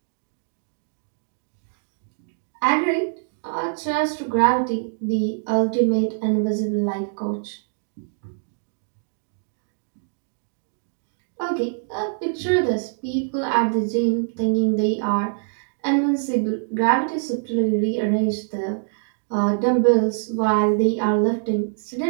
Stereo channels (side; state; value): left; silent; digital silence